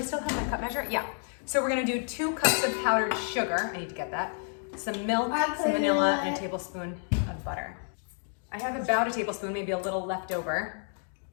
have my cup measure? Yeah. So we're gonna do 2 cups of powdered sugar. I need to get that. Some milk, some vanilla, and a tablespoon of butter. I have about a tablespoon, maybe a little left over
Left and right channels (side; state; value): right; silent; 55 dB below the other